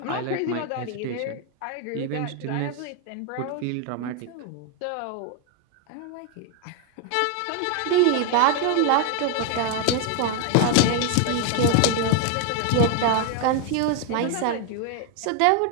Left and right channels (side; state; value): both; different; correlation 0.01